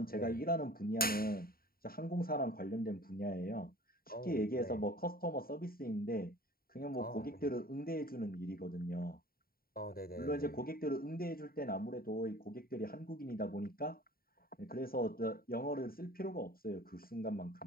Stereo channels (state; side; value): late; right; 0.43 ms